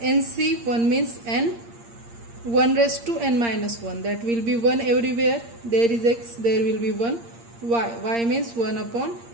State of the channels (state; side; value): late; left; 8.6 ms